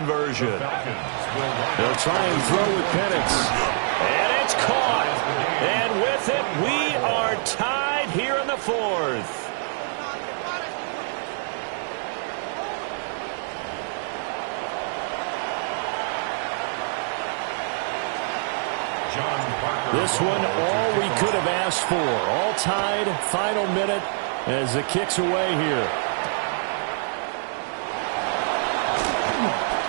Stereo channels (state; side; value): silent; left; digital silence